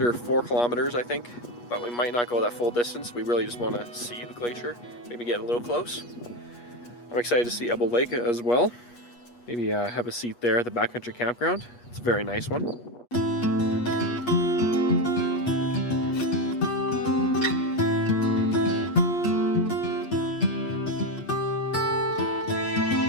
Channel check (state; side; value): late; right; 8.3 ms